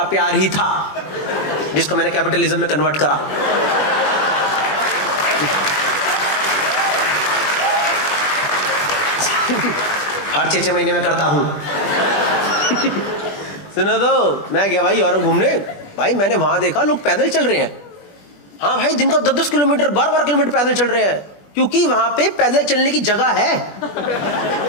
प्यार ही था जिसको मैंने कैपिटलिज्म में कन्वर्ट करा। हर 6-6 महीने में करता हूं। सुनो तो, मैं गया भाई यूरोप घूमने। भाई मैंने वहां देखा लोग पैदल चल रहे हैं। हाँ भाई, दिन का 10-10 किलोमीटर 12-12 किलोमीटर पैदल चल रहे हैं, क्योंकि वहां पे पैदल चलने की जगह है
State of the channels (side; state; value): right; late; 20 ms